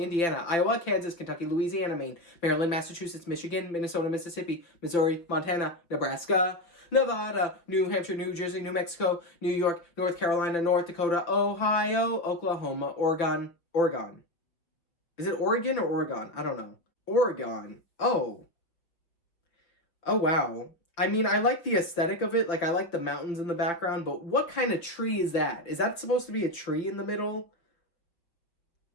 Iowa, Kansas, Kentucky, Louisiana, Maine, Maryland, Massachusetts, Michigan, Minnesota, Mississippi, Missouri, Montana, Nebraska, Nevada, New Hampshire, New Jersey, New Mexico, New York, North Carolina, North Dakota, Ohio, Oklahoma, Oregon. Is it Oregon or Oregon? I don't know. Oregon. Oh. Oh, wow. I mean, I like the aesthetic of it. Like, I like the mountains in the background, but what kind of tree is that? Is that supposed to be a tree in the middle?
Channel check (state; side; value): late; right; 5.7 ms